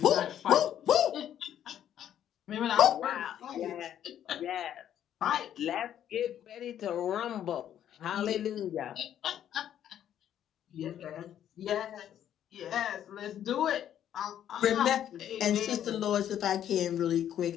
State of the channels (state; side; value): quieter; right; 10.5 dB